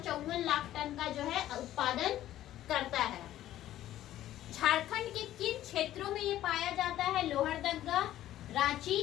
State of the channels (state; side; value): quieter; right; 13.3 dB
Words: लाख टन का जो है उत्पादन करता है। झारखंड के किन क्षेत्रों में ये पाया जाता है? लोहरदगा, रांची,